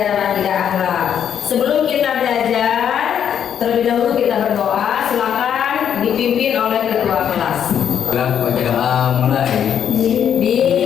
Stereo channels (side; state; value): right; quieter; 8.8 dB